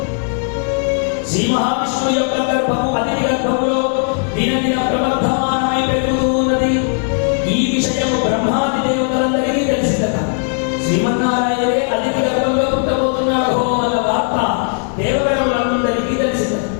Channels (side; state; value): right; silent; 56 dB below the other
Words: శ్రీ మహావిష్ణువు యొక్క గర్భము అతిథి గర్భములో దినదిన ప్రవర్ధమానమై పెరుగుతూ ఉన్నది. ఈ విషయము బ్రహ్మాది దేవతలందరికీ తెలిసిందట. శ్రీమన్నారాయణే అతిథి గర్భంలో పుట్టబోతున్నాడు అన్న వార్త దేవగణములందరికీ తెలిసింది.